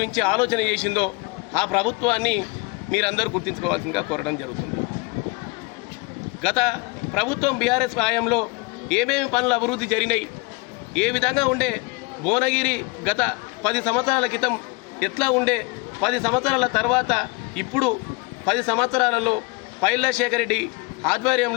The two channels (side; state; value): right; quieter; 26.2 dB